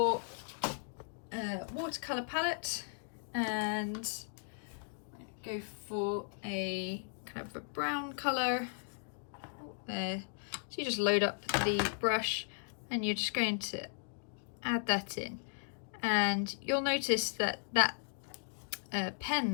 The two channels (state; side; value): silent; right; digital silence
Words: watercolour palette and go for a kind of a brown colour there. So you just load up the brush and you're just going to add that in, and you'll notice that that